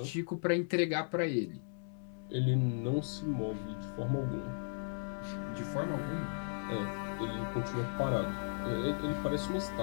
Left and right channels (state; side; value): silent; right; digital silence